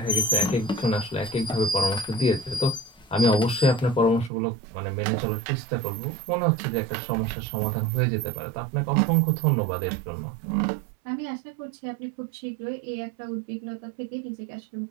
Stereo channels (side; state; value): left; drops out; at 4.3 s